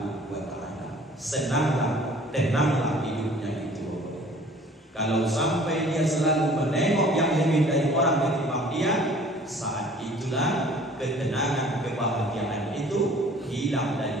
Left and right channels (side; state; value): both; normal; correlation 0.51